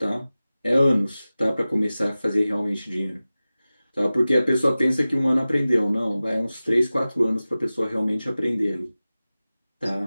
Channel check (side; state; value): both; inverted; correlation -0.96